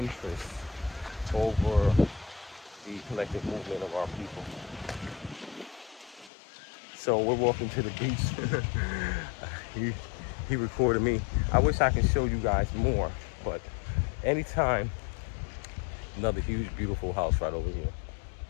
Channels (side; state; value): right; drops out; at 6.3 s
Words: over the collective movement of our people. So we're walking to the beach. he recorded me. I wish I could show you guys more, but anytime, another huge, beautiful house right over here.